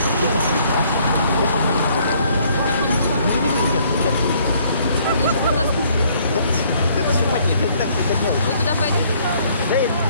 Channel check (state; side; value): inverted; both; correlation -0.64